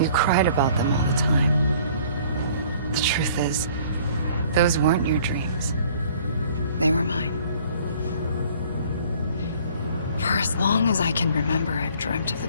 cried about them all the time. The truth is, those weren't your dreams. They were mine. For as long as I can remember, I've dreamt of the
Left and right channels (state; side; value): inverted; both; correlation -0.55